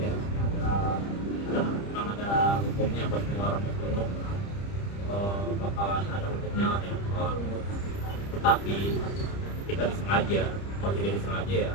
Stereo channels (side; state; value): right; late; 30 ms